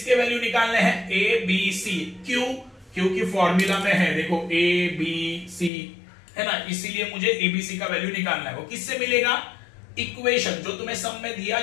वैल्यू निकालने हैं? A B C. क्यों? क्योंकि फॉर्मूला में है, देखो ए बी सी है ना, इसीलिए मुझे एबीसी का वैल्यू निकालना है। वो किससे मिलेगा? इक्वेशन, जो तुम्हें सम में दिया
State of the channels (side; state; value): right; drops out; at 5.7 s